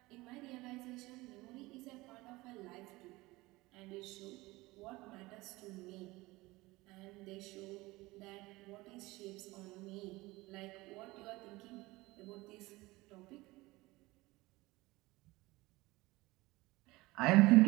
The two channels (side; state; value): left; quieter; 20.8 dB